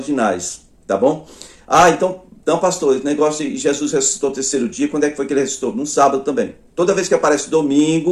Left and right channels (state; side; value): identical; both; correlation 1.00